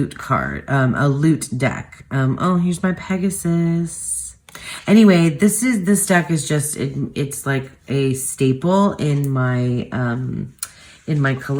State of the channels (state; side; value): identical; both; correlation 1.00